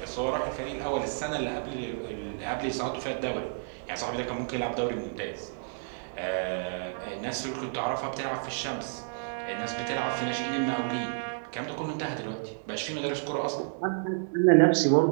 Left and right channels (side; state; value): left; silent; digital silence